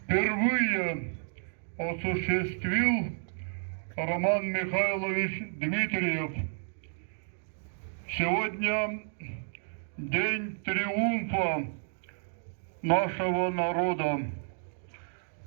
впервые осуществил Роман Михайлович Дмитриев. Сегодня день триумфа нашего народа.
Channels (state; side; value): silent; left; digital silence